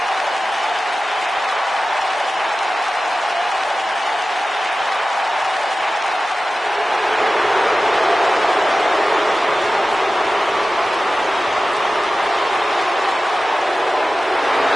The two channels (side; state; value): both; normal; correlation 0.95